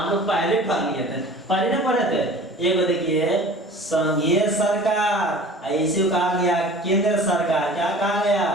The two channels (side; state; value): both; normal; correlation 0.43